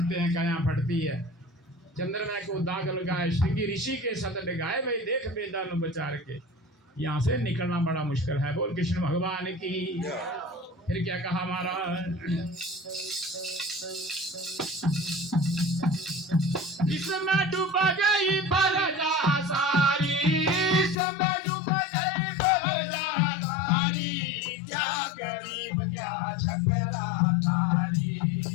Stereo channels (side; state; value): right; drops out; at 21.0 s